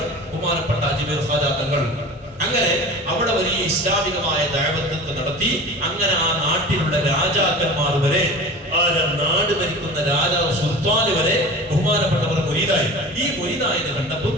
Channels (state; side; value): normal; both; correlation 0.36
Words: ബഹുമാനപ്പെട്ട അജ്മീർ ഖാജാ തങ്ങൾ. അങ്ങനെ അവിടെ വലിയ ഇസ്ലാമികമായ ദഅവത്ത് നടത്തി. അങ്ങനെ ആ നാട്ടിലുള്ള രാജാക്കന്മാർ വരെ, ആ നാട് ഭരിക്കുന്ന രാജാവ് സുൽത്താൻ വരെ ബഹുമാനപ്പെട്ടവർ മുരീദായി. ഈ മുരീദായത് കണ്ടപ്പോൾ